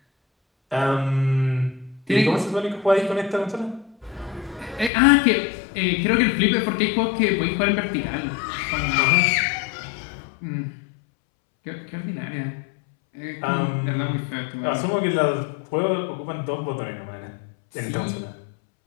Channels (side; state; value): right; drops out; at 4.9 s